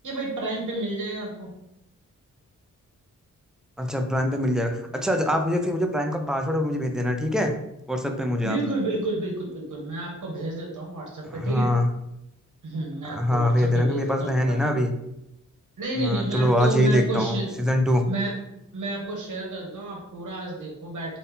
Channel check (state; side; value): normal; both; correlation 0.67